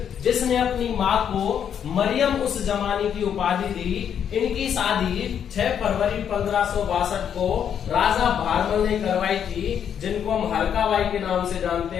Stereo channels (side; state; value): right; quieter; 8.5 dB